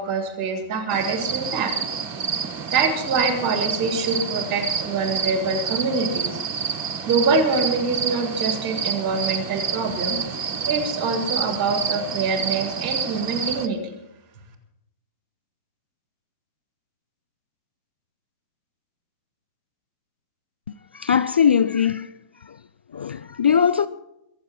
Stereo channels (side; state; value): left; late; 1.7 ms